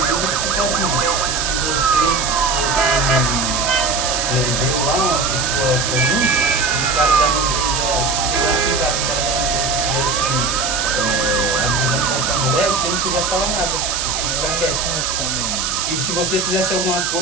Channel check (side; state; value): right; noise; hiss, 1 dB below the sound